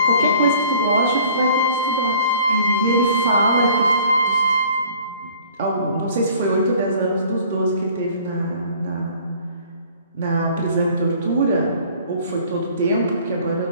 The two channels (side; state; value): both; inverted; correlation -0.53